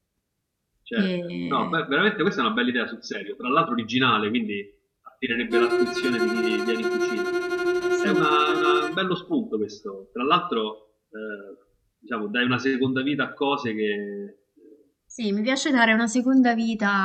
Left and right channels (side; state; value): both; identical; correlation 1.00